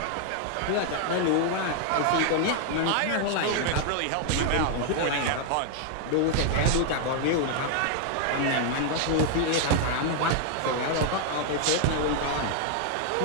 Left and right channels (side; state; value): both; different; correlation 0.00